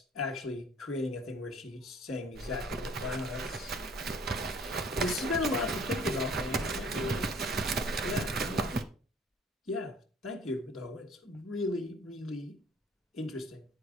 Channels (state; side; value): normal; both; correlation 0.53